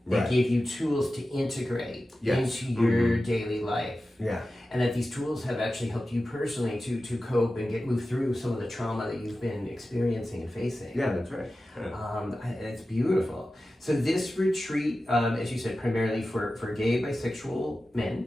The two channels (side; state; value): both; normal; correlation 0.94